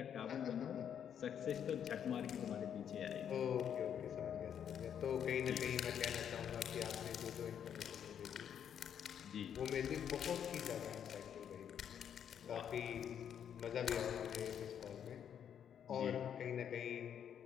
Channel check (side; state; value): right; quieter; 8.8 dB